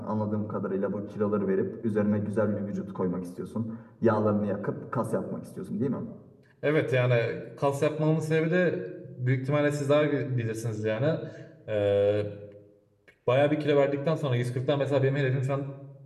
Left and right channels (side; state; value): both; identical; correlation 1.00